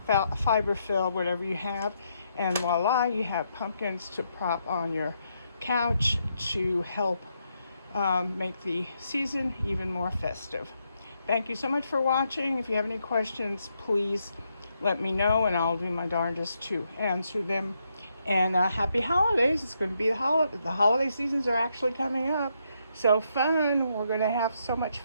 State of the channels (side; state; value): both; inverted; correlation -0.78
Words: fiber fill, whatever you have, and voila, you have pumpkins to prop on your couch to help make the season even more festive. Thank you so much for watching. If you have any questions, please let me know, and I'll do my darndest to answer them. And happy holidays. It's going to be the holiday seasons are actually coming up. So fun. We're going to have so much